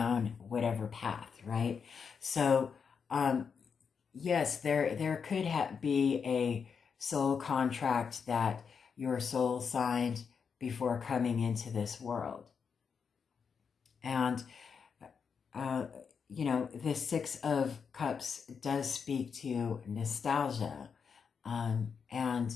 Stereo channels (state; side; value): quieter; right; 6.2 dB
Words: whatever path, right? So yes, there could be a soul contract that your soul signed before coming into this world. And, the Six of Cups does speak to nostalgia and